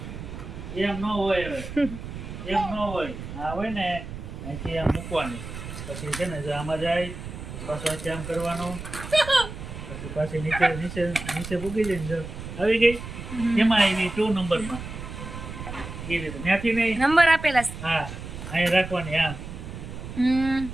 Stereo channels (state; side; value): noise; right; rumble, 10 dB below the sound